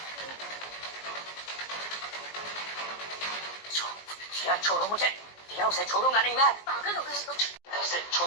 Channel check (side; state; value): right; late; 19 ms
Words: दिया छोड़ो मुझे, दिया उसे छोड़ूंगा नहीं मैं। पागल हो गए तुम। उसे